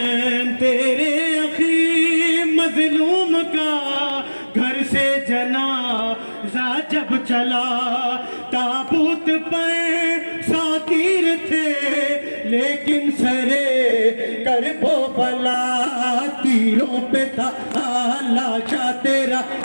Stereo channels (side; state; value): both; inverted; correlation -1.00